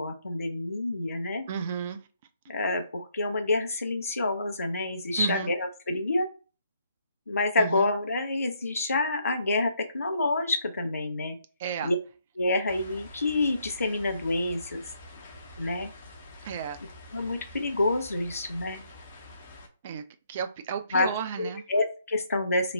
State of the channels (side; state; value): both; inverted; correlation -0.72